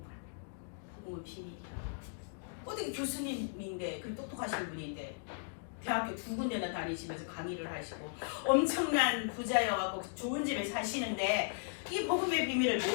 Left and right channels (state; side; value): silent; right; digital silence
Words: 거야. 복음은 비밀이야. 어떻게 교수님인데 그 똑똑하신 분인데 대학교 2군데나 다니시면서 강의를 하시고 엄청난 부자여갖고 좋은 집에 사시는데 이 복음의 비밀을